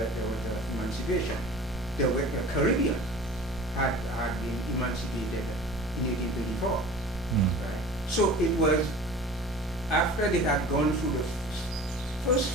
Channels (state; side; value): normal; both; correlation 0.41